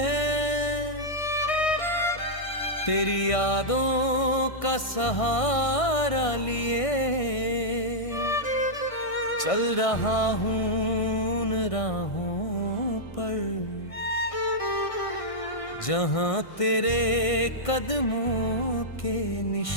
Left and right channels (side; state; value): right; late; 1.6 ms